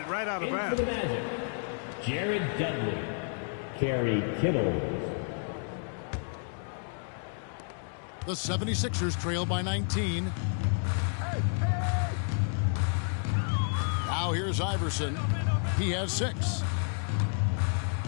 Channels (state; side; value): silent; right; 57 dB below the other